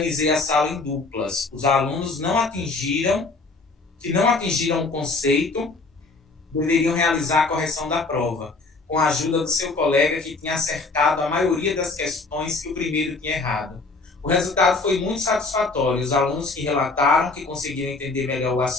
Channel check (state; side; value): quieter; right; 3.7 dB